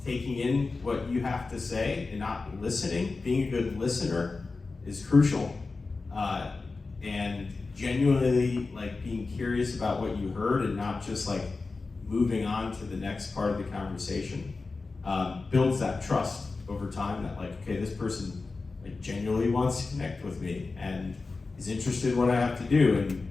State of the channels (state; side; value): quieter; right; 3.9 dB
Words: taking in what you have to say and not listening. Being a good listener is crucial. And genuinely like being curious about what you heard, and not just like moving on to the next part of the conversation, builds that trust over time, that like, okay, this person like genuinely wants to connect with me and is interested in what I have to do.